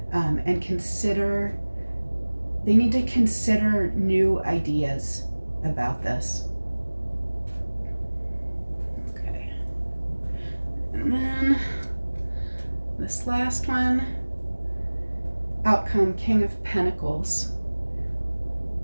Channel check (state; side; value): inverted; both; correlation -1.00